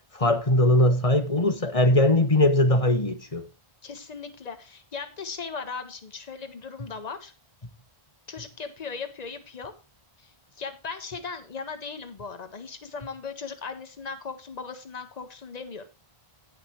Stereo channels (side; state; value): right; late; 1.9 ms